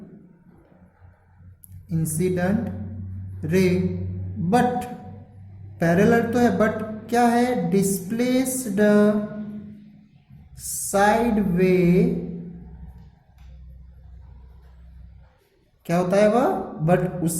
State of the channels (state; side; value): identical; both; correlation 1.00